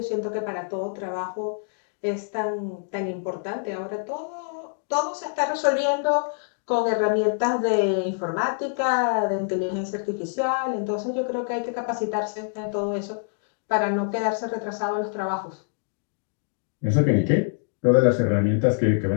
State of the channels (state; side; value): silent; right; digital silence